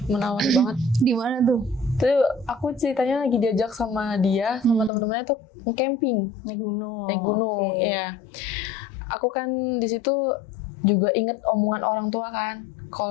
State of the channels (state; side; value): drops out; right; at 4.9 s